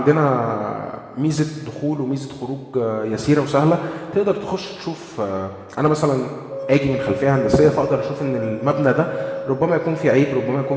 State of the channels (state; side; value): identical; both; correlation 1.00